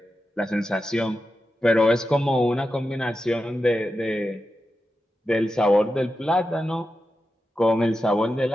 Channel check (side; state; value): both; normal; correlation 0.90